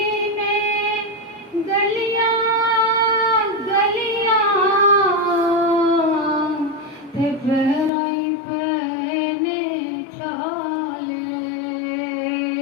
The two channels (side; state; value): right; drops out; at 7.9 s